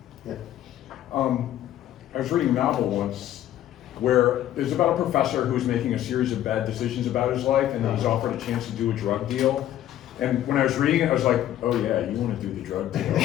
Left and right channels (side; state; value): right; quieter; 12.3 dB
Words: Yeah. I was reading a novel once where it's about a professor who's making a series of bad decisions about his life, and he's offered a chance to do a drug deal. And when I was reading it, I was like, oh yeah, you want to do the drug deal.